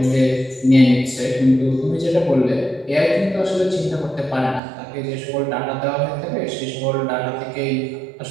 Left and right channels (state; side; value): drops out; left; at 4.6 s